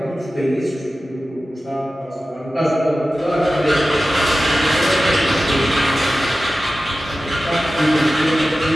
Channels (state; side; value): normal; both; correlation 0.95